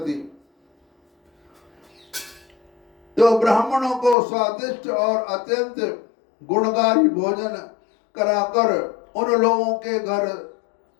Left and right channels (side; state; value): right; drops out; at 4.2 s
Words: तो ब्राह्मणों को स्वादिष्ट और अत्यंत गुणकारी भोजन कराकर उन लोगों के घर